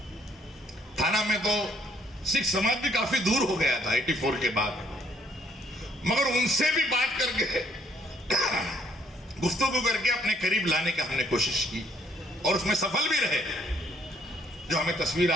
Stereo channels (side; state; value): both; normal; correlation 0.65